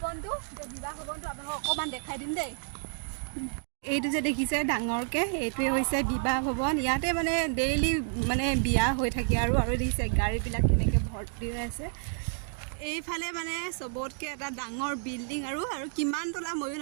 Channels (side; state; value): left; silent; 58 dB below the other